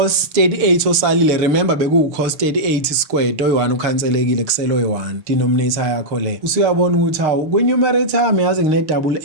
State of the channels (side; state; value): left; late; 6.6 ms